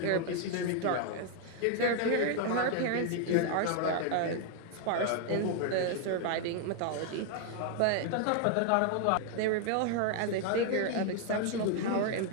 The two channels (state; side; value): different; both; correlation 0.00